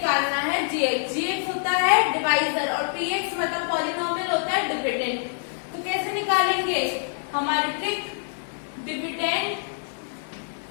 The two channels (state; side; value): silent; right; 61 dB below the other